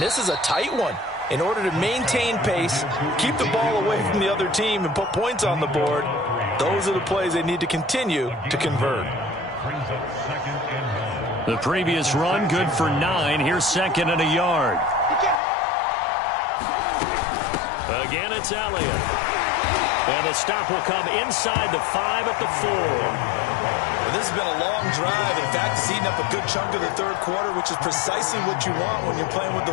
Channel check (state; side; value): drops out; right; at 15.4 s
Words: this is a tight one. In order to maintain pace, keep the ball away from the other team, and put points on the board, those are the plays they need to continue to convert. The previous run, good for 9. Here's 2nd and a yard. Again, it's Elliott. And the stop will come inside the 5 at the 4. Well, this has been a long drive. In fact, it's eaten up a good chunk of the 3rd quarter, which is precisely what you want when you're playing with